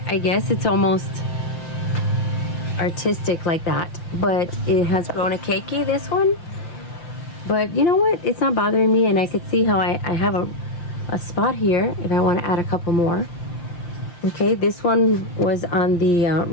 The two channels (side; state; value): right; late; 5.8 ms